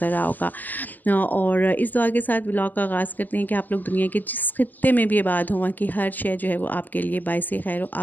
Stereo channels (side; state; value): right; late; 0.087 ms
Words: रहा होगा। और इस दुआ के साथ व्लॉग का आगाज़ करते हैं कि आप लोग दुनिया के जिस खित्ते में भी आबाद हों कि हर शय जो है वो आपके लिए बाइस खैर व